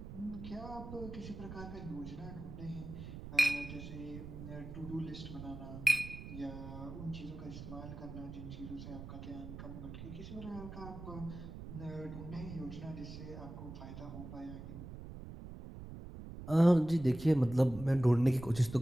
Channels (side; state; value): right; noise; rumble, 11 dB below the sound